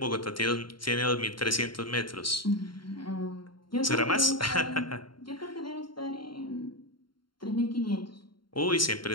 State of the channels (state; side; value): late; right; 0.72 ms